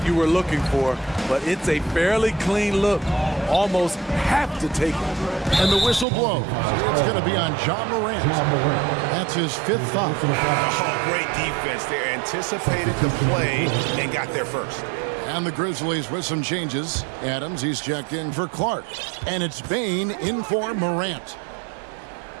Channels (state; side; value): drops out; left; at 6.1 s